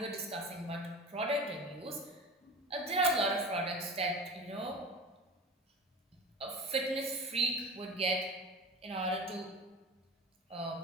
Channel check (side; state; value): both; normal; correlation 0.33